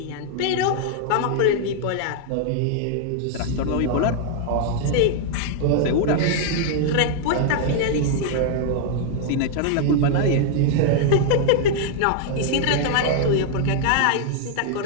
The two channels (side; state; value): both; different; correlation -0.01